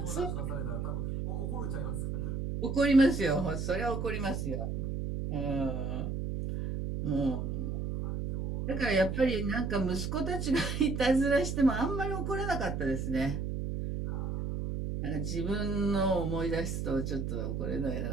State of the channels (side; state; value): right; noise; hum, 2 dB below the sound